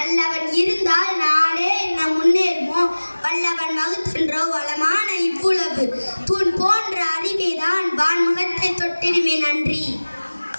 அல்லவன் இருந்தால் நாடே என்ன முன்னேறுமோ. வல்லவன் வகுத்தன்றோ வளமான இவ்வுலகு. தூண் போன்ற அறிவேதான் வான்முகத்தை தொட்டிடுமே. நன்றி.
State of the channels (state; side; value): inverted; both; correlation -1.00